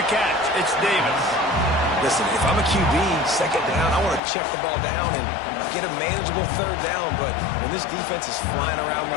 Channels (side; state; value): right; drops out; at 4.2 s